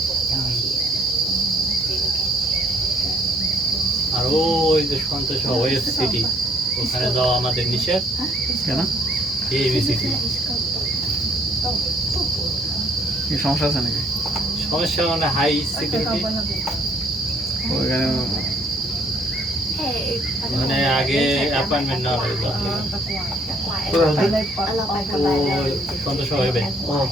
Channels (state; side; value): normal; both; correlation 0.64